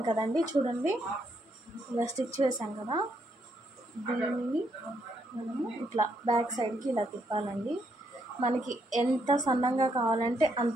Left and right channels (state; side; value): normal; both; correlation 0.75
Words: కదండి, చూడండి ఇలా స్టిచ్ వేసాం కదా, దీన్ని మనము ఇట్లా బ్యాక్ సైడ్కి ఇలా తిప్పాలండి. మనకి ఎంత సన్నంగా కావాలంటే